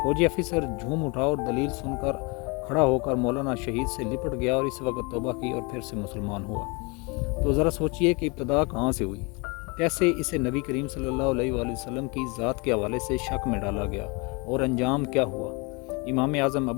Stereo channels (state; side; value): quieter; right; 29.3 dB